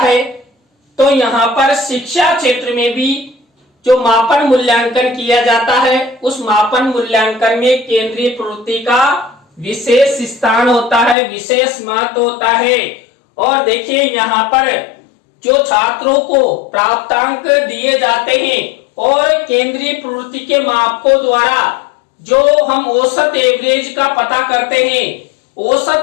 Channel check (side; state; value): right; drops out; at 11.2 s